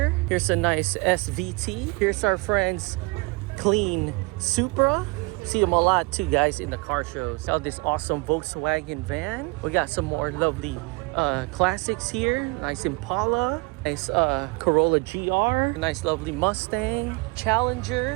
Here's a nice SVT. Here's our friend's clean Supra. See them a lot too, guys, in the car shows. Got this awesome Volkswagen van. We got some more lovely classics here. Nice Impala. Nice Corolla GR. Nice lovely Mustang.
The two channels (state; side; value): quieter; left; 26.9 dB